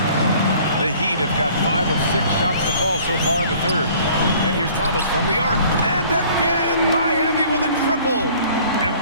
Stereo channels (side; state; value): both; inverted; correlation -0.53